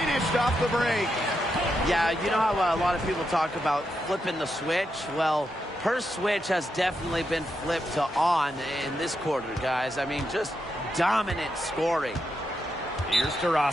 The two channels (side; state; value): both; normal; correlation 0.84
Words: off the break. Yeah, you know how a lot of people talk about flipping the switch? Well, her switch has definitely been flipped to on in this quarter, guys. I mean, just dominant scoring. Here's